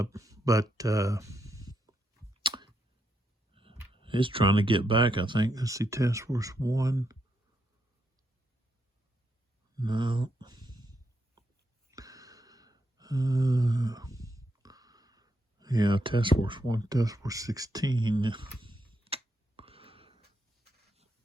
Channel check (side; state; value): both; normal; correlation 0.80